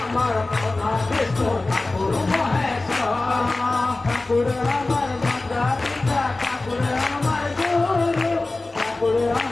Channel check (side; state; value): right; quieter; 3.1 dB